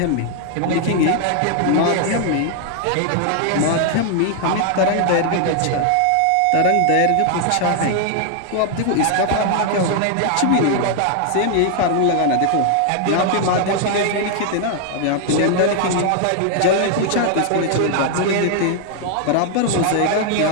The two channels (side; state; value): both; different; correlation 0.00